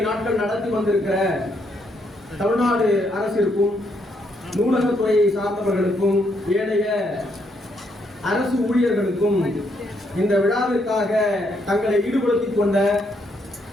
நாட்கள் நடத்தி வந்திருக்கிற தமிழ்நாடு அரசிற்கும் நூலகத்துறையை சார்ந்தவர்களுக்கும் ஏனைய அரசு ஊழியர்களுக்கும் இந்த விழாவிற்காக தங்களை ஈடுபடுத்திக் கொண்ட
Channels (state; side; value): normal; both; correlation 0.75